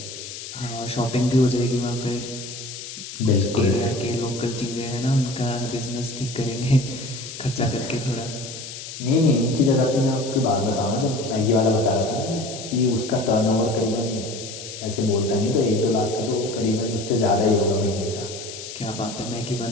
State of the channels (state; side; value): noise; left; hiss, 11 dB below the sound